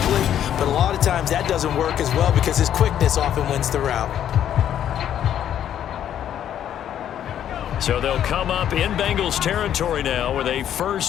but a lot of times that doesn't work as well because his quickness often wins the route. So they'll come up in Bengals territory now with a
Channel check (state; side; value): quieter; right; 10.3 dB